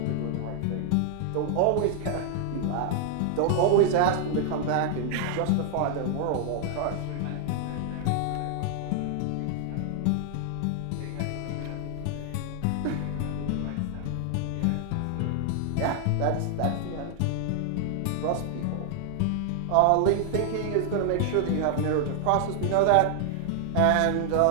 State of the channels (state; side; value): different; both; correlation 0.00